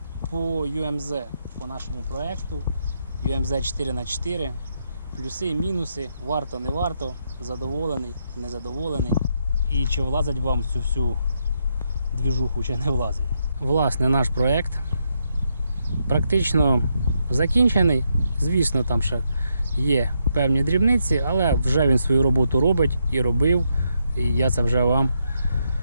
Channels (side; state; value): both; inverted; correlation -0.79